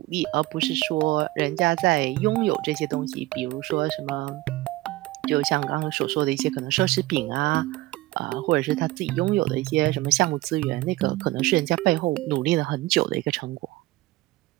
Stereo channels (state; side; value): quieter; left; 18.5 dB